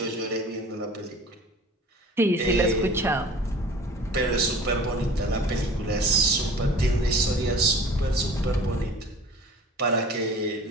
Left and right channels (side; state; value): both; normal; correlation 0.44